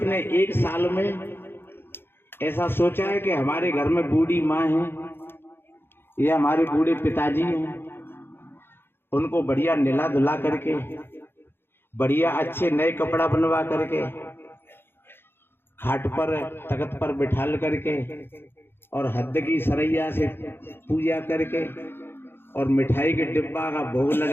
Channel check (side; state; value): right; late; 0.11 ms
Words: एक साल में ऐसा सोचा है कि हमारे घर में बूढ़ी माँ है या हमारे बूढ़े पिताजी हैं, उनको बढ़िया निला धुला करके, बढ़िया अच्छे नए कपड़ा बनवा करके, खाट पर तख्त पर बिठाल करके और हद की सरैया से पूजा करके और मिठाई के डिब्बा का भोग